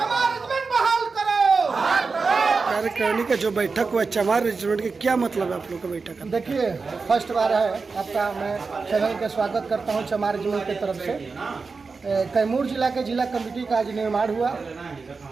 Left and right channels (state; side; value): quieter; left; 4.5 dB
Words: रेजिमेंट बहाल करो। कार्यकारिणी का जो बैठक हुआ चमार रेजिमेंट के क्या मतलब है आप लोग का बैठक का? देखिए, फर्स्ट बार है आपका, मैं चैनल का स्वागत करता हूं चमार रेजिमेंट की तरफ से। कैमूर जिला के जिला कमेटी का आज निर्माण हुआ,